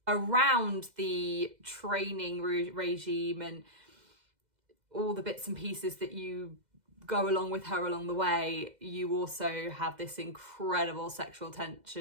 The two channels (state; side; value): late; left; 2.0 ms